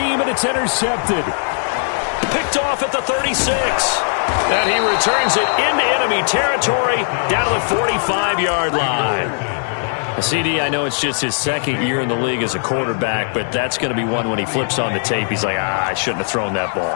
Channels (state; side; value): silent; right; digital silence